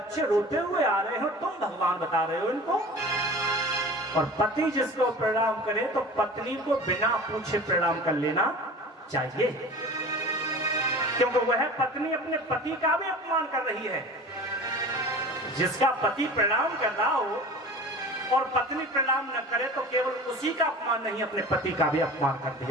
रोते हुए आ रहे हो, तुम भगवान बता रहे हो इनको। और पति जिसको प्रणाम करे तो पत्नी को बिना पूछे प्रणाम कर लेना चाहिए, क्योंकि वह पत्नी अपने पति का भी अपमान कर रही है। जिसका पति प्रणाम कर रहा हो और पत्नी प्रणाम न करे तो केवल उसी का अपमान नहीं, अपने पति का भी अपमान कर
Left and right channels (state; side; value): normal; both; correlation 0.38